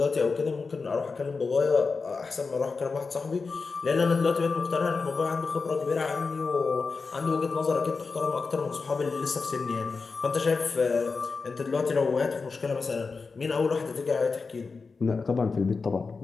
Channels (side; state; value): right; quieter; 4.5 dB